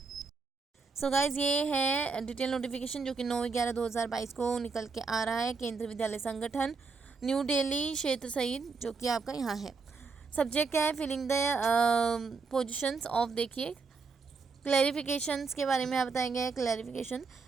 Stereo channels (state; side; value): quieter; left; 4.6 dB